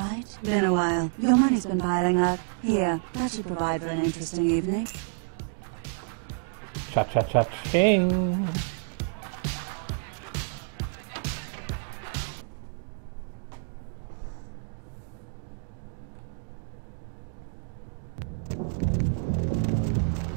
Been a while. Your money's been piling up. Here, that should provide for an interesting evening. Cha-cha-cha-ching!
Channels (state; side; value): silent; left; 59 dB below the other